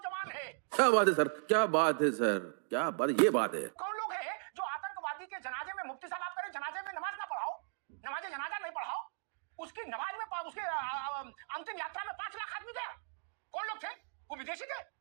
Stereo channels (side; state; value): left; silent; digital silence